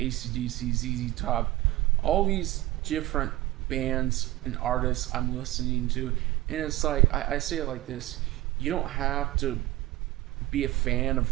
ZZ Top, all these different bands and artists I'm listening to. And it's like, I say it like this: you don't have to be a fan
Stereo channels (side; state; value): left; quieter; 17.2 dB